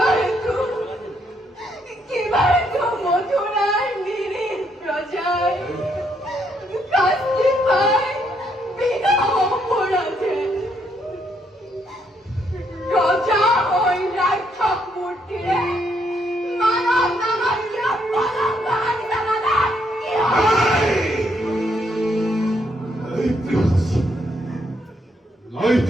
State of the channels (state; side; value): normal; both; correlation 0.74